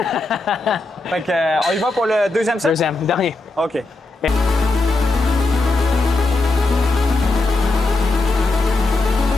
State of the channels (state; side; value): quieter; right; 3.1 dB